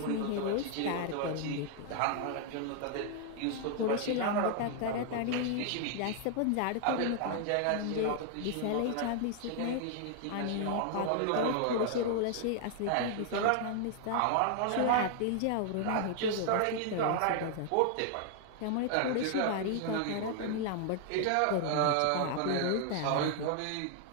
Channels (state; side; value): different; both; correlation 0.00